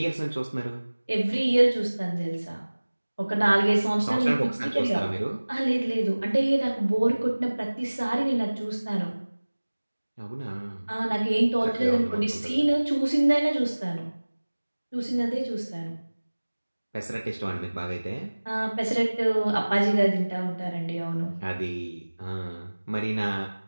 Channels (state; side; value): inverted; both; correlation -1.00